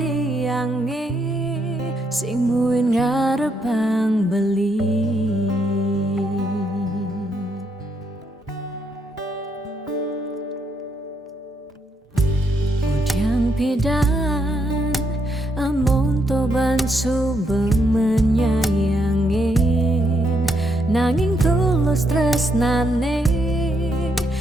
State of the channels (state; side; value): normal; both; correlation 0.77